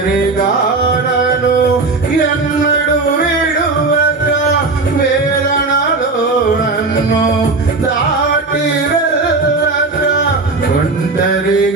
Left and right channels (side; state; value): left; quieter; 3.7 dB